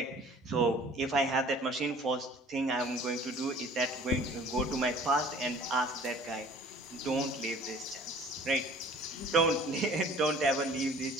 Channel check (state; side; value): normal; both; correlation 0.49